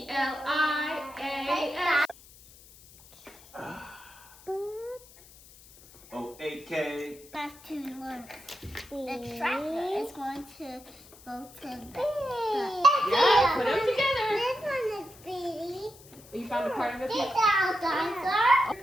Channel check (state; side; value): noise; left; hiss, 22 dB below the sound